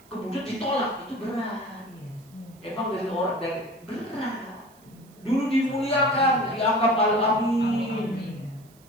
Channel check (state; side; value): noise; right; hiss, 28 dB below the sound